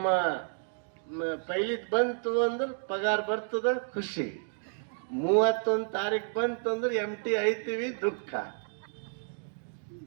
ಪೈಲಿದ್ ಬಂತು ಅಂದ್ರೆ ಪಗಾರ ಬರ್ತದ, ಖುಷಿ. 31 ತಾರೀಕು ಬಂತು ಅಂದ್ರೆ ಎಂಟಿ ಐತೀವಿ, ದುಃಖ.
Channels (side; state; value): left; silent; digital silence